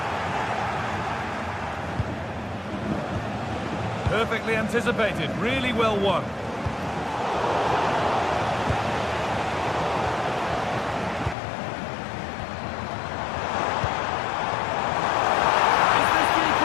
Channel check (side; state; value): right; drops out; at 11.4 s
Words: Perfectly anticipated, really well won. Is this the